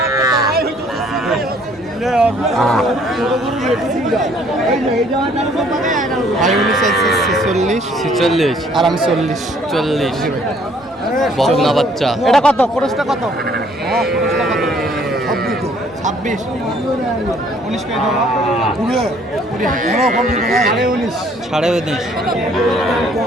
ভাই উনি চাইছে 46 আর আমি 40। 40 বকনা বাচ্চা। এটা কত? খরচটা কত? খরচটা কত? 26 19 করে দাও পুরো সাড়ে 19 সাড়ে 19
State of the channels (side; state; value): both; normal; correlation 0.61